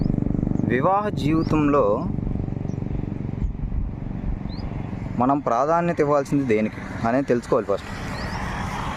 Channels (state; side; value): identical; both; correlation 1.00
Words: వివాహ జీవితంలో మనం ప్రాధాన్యత ఇవ్వాల్సింది దేనికి అనేది తెలుసుకోవాలి. ఫస్ట్